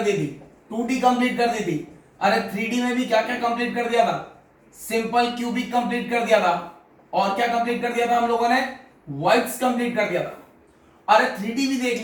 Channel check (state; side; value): identical; both; correlation 1.00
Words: दी थी, 2D कंप्लीट कर दी थी। अरे 3D में भी क्या क्या कंप्लीट कर दिया था। सिंपल क्यूबिक कंप्लीट कर दिया था। और क्या कंप्लीट कर दिया था हम लोगों ने, वर्ड्स कंप्लीट कर दिया था। अरे 3D भी देख